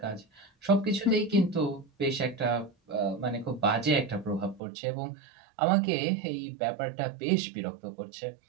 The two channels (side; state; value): left; drops out; at 4.6 s